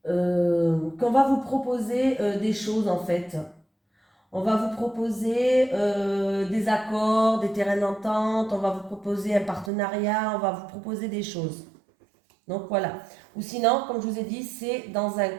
qu'on va vous proposer des choses en fait. On va vous proposer des accords, des terrains d'entente, on va vous proposer un partenariat, on va vous proposer des choses. Donc voilà. Ou sinon, comme je vous ai dit, c'est dans un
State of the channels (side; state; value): left; drops out; at 9.7 s